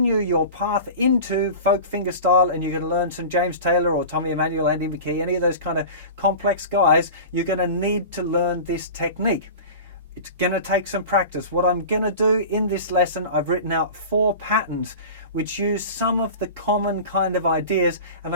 your path into folk fingerstyle and you're going to learn some James Taylor or Tommy Emmanuel, Andy McKee, any of those kind of complex guys, you're going to need to learn this technique. It's going to take some practice. What I'm going to do in this lesson, I've written out 4 patterns which use some of the common kind of ideas, and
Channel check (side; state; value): both; inverted; correlation -0.34